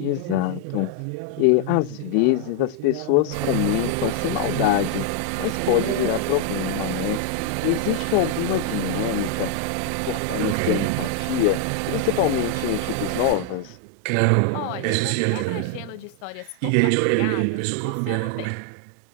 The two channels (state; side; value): different; both; correlation 0.00